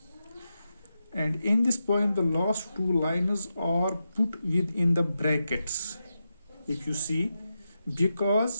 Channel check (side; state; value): both; inverted; correlation -0.88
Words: And in this poem the last two lines are put within the brackets, if you see,